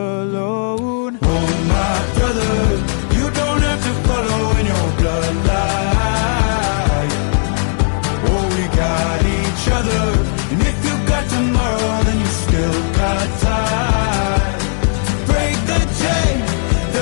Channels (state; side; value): silent; right; 63 dB below the other